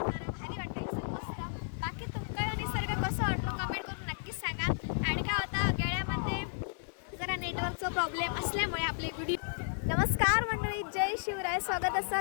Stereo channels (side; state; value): right; silent; digital silence